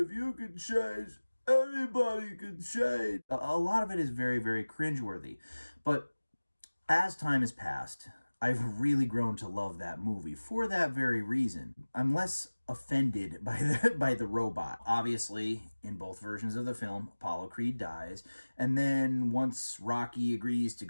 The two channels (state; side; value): inverted; both; correlation -1.00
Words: you can change, everybody can change. A lot of it is very, very cringeworthy. But as time has passed, I've really grown to love that movie for that very reason. I'm less offended by the robot. Obviously, in both versions of the film, Apollo Creed dies, and then once Rocky agrees to